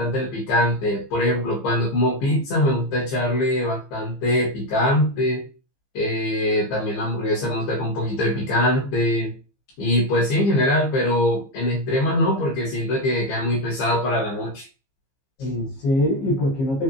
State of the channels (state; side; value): late; right; 15 ms